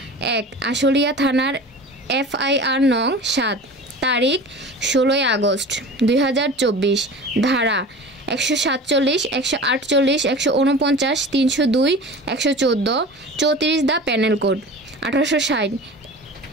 আশুলিয়া থানার FIR নং ৭ তারিখ ১৬ আগস্ট ২০২৪ ধারা ১৪৭, ১৪৮, ১৪৯, ৩০২, ১১৪, ৩৪ দ্য প্যানেল কোড ১৮৬০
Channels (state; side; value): normal; both; correlation 0.37